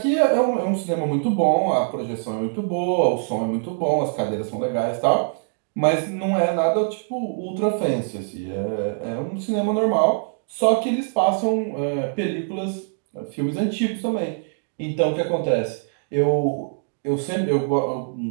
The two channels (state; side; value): silent; left; 63 dB below the other